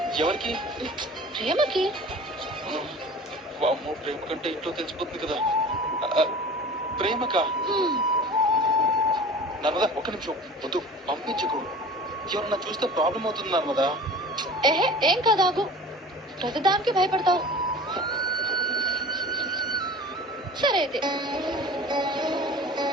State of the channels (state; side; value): normal; both; correlation 0.40